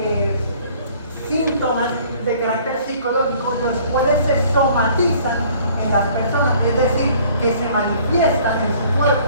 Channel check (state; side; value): inverted; both; correlation -0.55